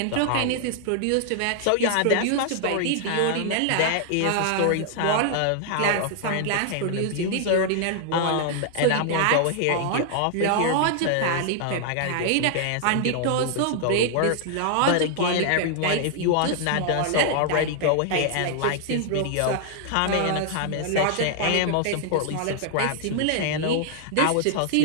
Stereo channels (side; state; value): both; different; correlation 0.00